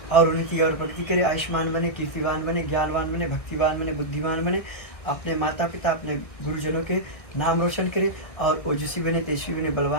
और उन्नति और प्रगति करें, आयुष्मान बने, कीर्तिवान बने, ज्ञानवान बने, भक्तिवान बने, बुद्धिमान बने, अपने माता पिता अपने गुरुजनों के नाम रोशन करें, और ओजस्वी बने, तेजस्वी बने,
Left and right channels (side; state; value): right; late; 1.6 ms